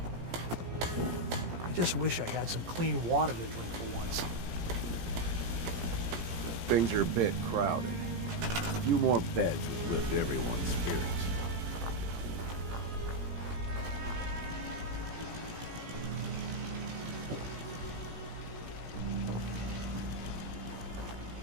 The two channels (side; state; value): left; late; 17 ms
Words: I just wish I had some clean water to drink for once. Things are a bit crowded. A few more beds would lift everyone's spirits.